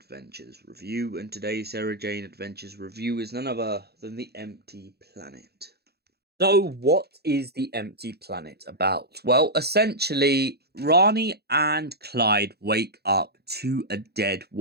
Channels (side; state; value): left; late; 0.47 ms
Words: review. And today's Sarah Jane Adventures review is none other than The Empty Planet. So, what is The Empty Planet about? Well, essentially, Rani and Clyde wake up to a dead